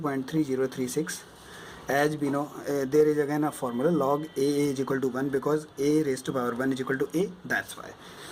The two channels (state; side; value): identical; both; correlation 1.00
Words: As we know, there is again a formula, log a is equal to 1, because a raised to power 1 is equal to a, that's why.